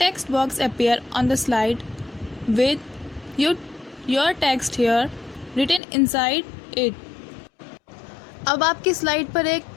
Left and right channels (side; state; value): right; drops out; at 5.8 s